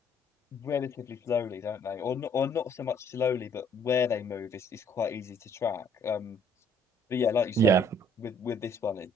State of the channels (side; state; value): both; normal; correlation 0.61